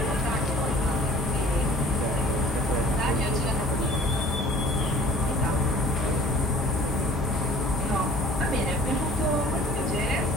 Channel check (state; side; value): normal; both; correlation 0.50